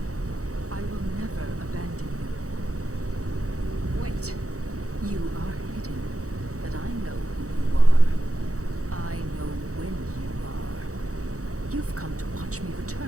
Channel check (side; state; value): left; late; 0.65 ms